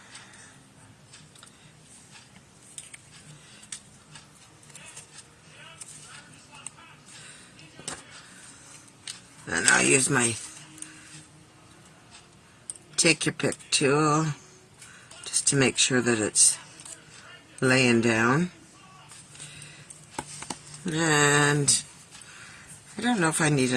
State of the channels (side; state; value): both; identical; correlation 1.00